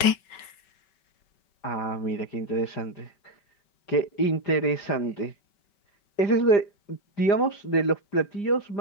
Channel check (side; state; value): right; late; 5.0 ms